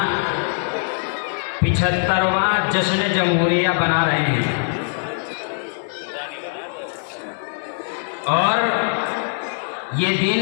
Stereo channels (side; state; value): right; silent; digital silence